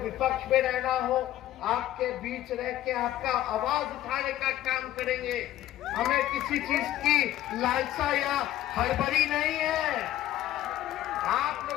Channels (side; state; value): right; quieter; 13.6 dB